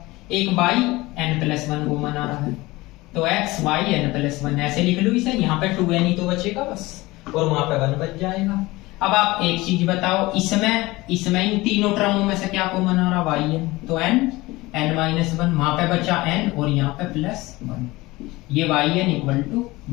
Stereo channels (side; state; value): right; quieter; 20.5 dB